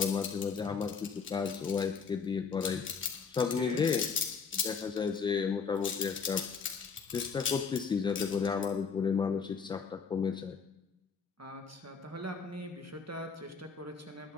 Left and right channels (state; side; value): quieter; right; 5.7 dB